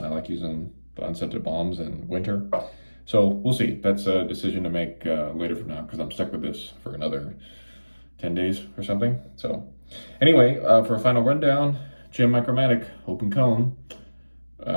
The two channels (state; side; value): inverted; both; correlation -1.00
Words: I like using the unscented balms in winter. So we'll see. That's a decision to make later from now, because I'm stuck with this for another 10 days or something. So anyway, for a final rundown, Jim Micromatic open cone,